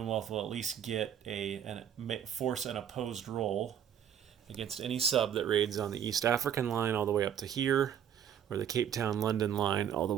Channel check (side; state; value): left; quieter; 9.2 dB